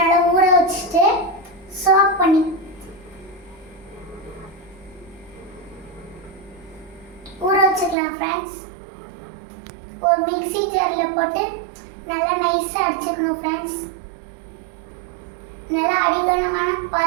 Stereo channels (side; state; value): left; drops out; at 8.0 s